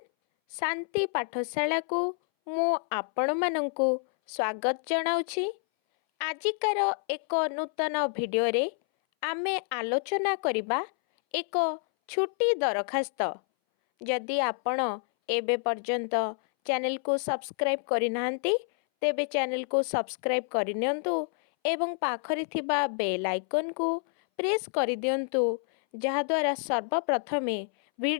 शांति पाठशाला को मु आपण मानंकु स्वागत जनाउछि। आजिकार एक नूतन वीडियो रे आमे आलोचना करिबा एक छुट्टी दरखास्त। जदि आपण एबे पर्यंत चैनल को सब्सक्राइब करि नाहंती तेबे चैनल को सब्सक्राइब करि नियंतु एवं पाखरि थिबा बेल आइकन को प्रेस करि दियंतु जहा द्वारा सर्वप्रथमे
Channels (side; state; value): right; silent; 59 dB below the other